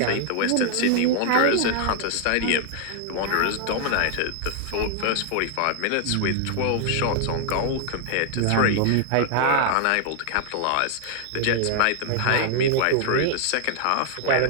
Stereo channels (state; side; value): different; both; correlation 0.00